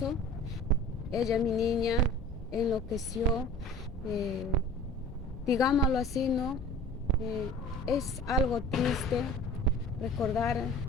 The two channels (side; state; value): both; normal; correlation 0.42